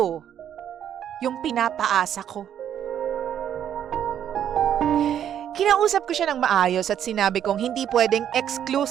yung pinapaasa ko. Kinausap ko siya ng maayos at sinabi kong hindi pwedeng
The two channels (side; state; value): left; quieter; 9.8 dB